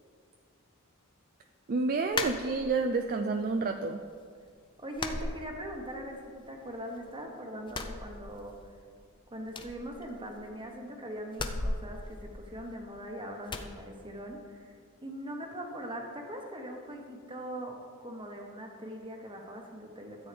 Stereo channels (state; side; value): normal; both; correlation 0.33